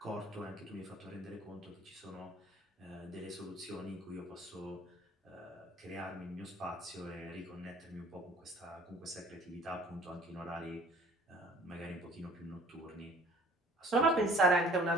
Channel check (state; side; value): normal; both; correlation 0.51